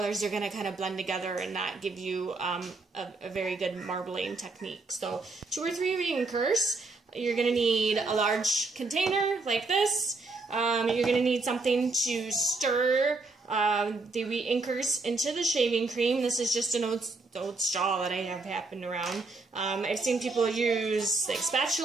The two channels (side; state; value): left; quieter; 3.6 dB